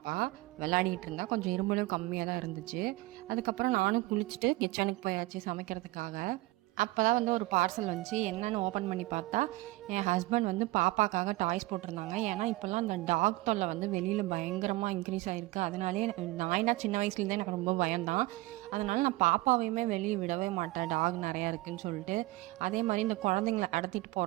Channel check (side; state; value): left; quieter; 20.0 dB